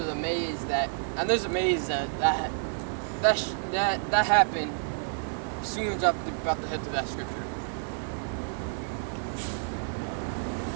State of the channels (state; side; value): silent; left; digital silence